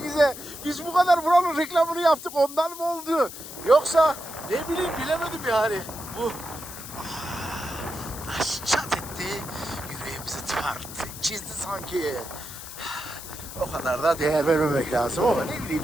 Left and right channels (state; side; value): noise; left; hiss, 12 dB below the sound